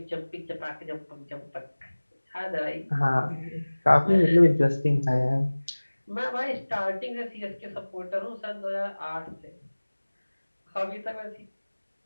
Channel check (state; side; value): inverted; both; correlation -1.00